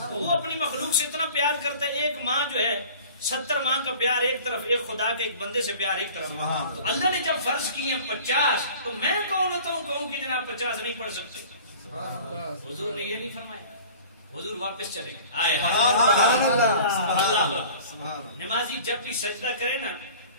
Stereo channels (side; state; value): both; inverted; correlation -0.44